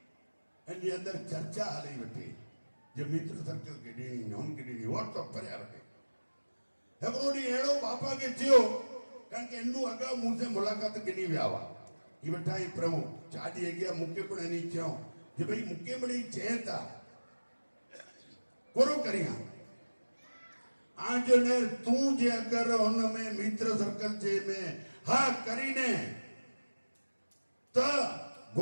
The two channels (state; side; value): inverted; both; correlation -1.00